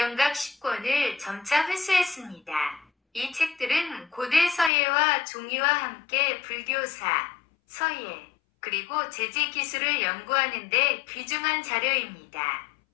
10권을 점차 회수했습니다. 이 책들은 고대 서예와 종이와 함께 불교사, 서예, 그리고 제지 기술을 연구하는 데 귀중한 자료입니다.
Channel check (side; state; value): right; drops out; at 4.7 s